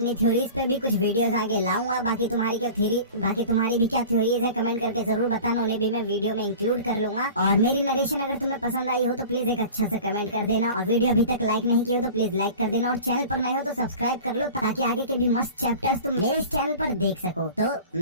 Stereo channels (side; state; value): both; inverted; correlation -0.39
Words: थ्योरीज पे भी कुछ वीडियोस आगे लाऊंगा। बाकी तुम्हारी भी क्या थ्योरीज है कमेंट करके जरूर बताना, उन्हें भी मैं वीडियो में इंक्लूड कर लूंगा। और मेरी नरेशन अगर तुम्हें पसंद आई हो तो प्लीज एक अच्छा सा कमेंट कर देना, और वीडियो अभी तक लाइक नहीं किया हो तो प्लीज लाइक कर देना, और चैनल पर नए हो तो सब्सक्राइब कर लो ताकि आगे के भी मस्त चैप्टर्स तुम मेरे इस चैनल पर देख सको। तो